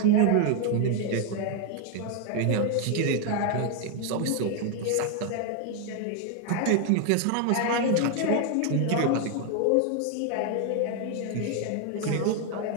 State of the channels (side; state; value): both; different; correlation 0.01